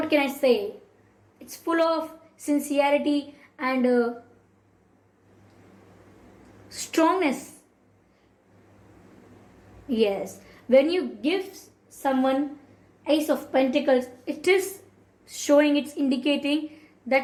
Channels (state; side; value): identical; both; correlation 1.00